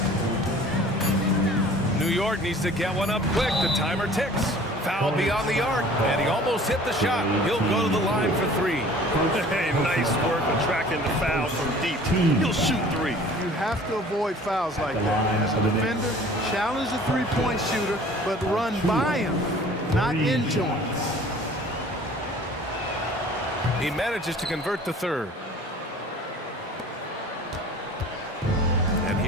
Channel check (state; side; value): normal; both; correlation 0.48